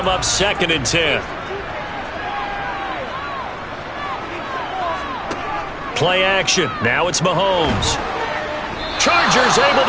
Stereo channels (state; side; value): identical; both; correlation 1.00